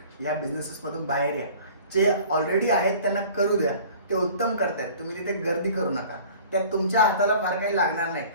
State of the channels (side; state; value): both; inverted; correlation -0.46